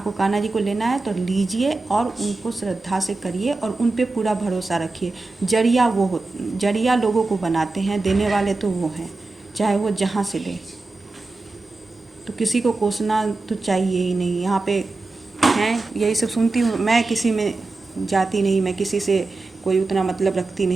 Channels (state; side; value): quieter; left; 3.4 dB